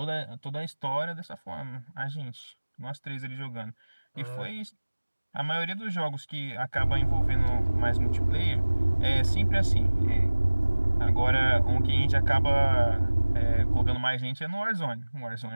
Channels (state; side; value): inverted; both; correlation -1.00